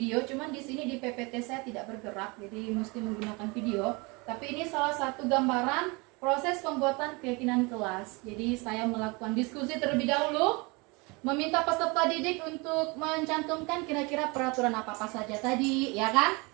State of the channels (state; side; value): quieter; left; 27.5 dB